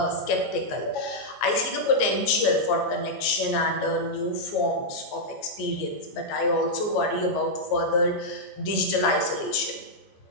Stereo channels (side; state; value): right; late; 14 ms